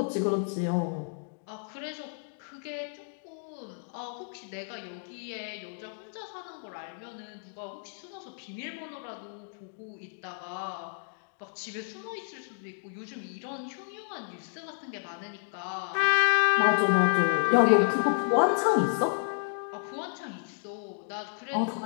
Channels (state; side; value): silent; right; digital silence